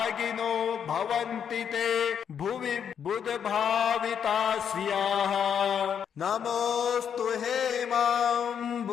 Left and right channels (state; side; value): quieter; right; 8.0 dB